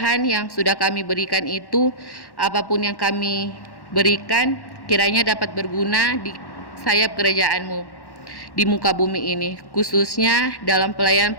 yang sudah kami berikan itu, apapun yang kami berikan kiranya dapat berguna di sayap kerajaan-Mu. di muka bumi ini, khususnya dalam pelayanan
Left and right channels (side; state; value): right; late; 1.1 ms